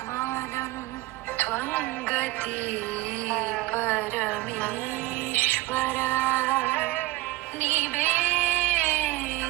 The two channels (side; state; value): left; quieter; 19.2 dB